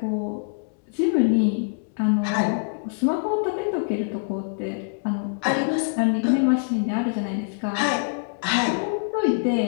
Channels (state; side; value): silent; right; 62 dB below the other